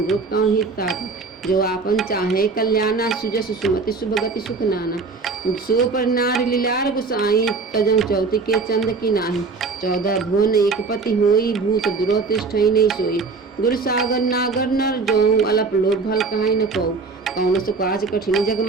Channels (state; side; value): quieter; left; 4.3 dB